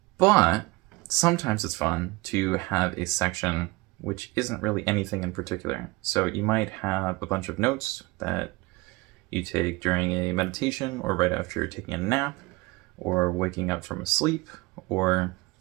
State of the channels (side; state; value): left; quieter; 23.1 dB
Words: But sometimes it's fun to have a section which isn't really anything in particular. So you might have a bunch of notes that you take during a meditation or right after you're taking a nap or waking up from a sleep or,